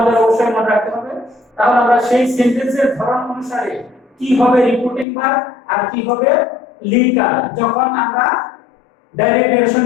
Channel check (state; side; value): drops out; right; at 5.1 s